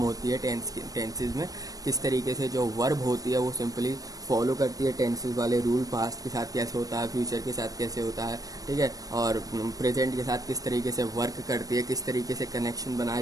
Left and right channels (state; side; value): late; left; 0.18 ms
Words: है टेंसेस में, किस तरीके से जो वर्ब होती है वो सिंपली फॉलो करती है टेंसेस वाले रूल। पास्ट के साथ कैसे होता है, फ्यूचर के साथ कैसे होता है, ठीक है, और प्रेजेंट के साथ किस तरीके से वर्क करती है, किस तरीके से कनेक्शन बनाया